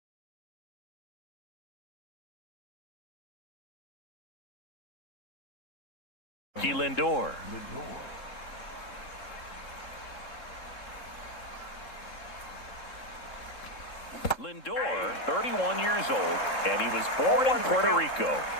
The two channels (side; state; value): right; late; 3.7 ms